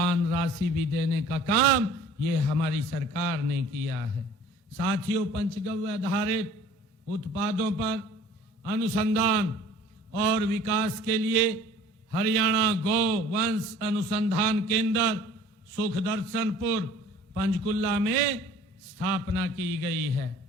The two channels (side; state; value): both; normal; correlation 0.50